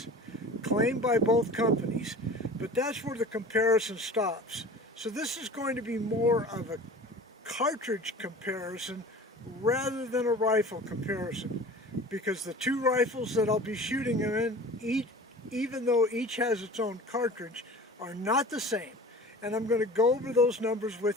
claimed by both companies, but that's where the comparison stops. So this is going to be more of a cartridge comparison rather than a rifle comparison, because the two rifles that I'll be shooting them in, even though each has its own cartridge, are not the same. And I'm going to go over those numbers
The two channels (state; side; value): normal; both; correlation 0.40